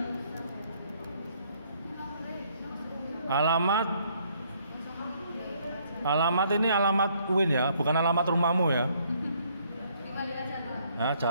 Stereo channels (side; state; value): both; inverted; correlation -0.67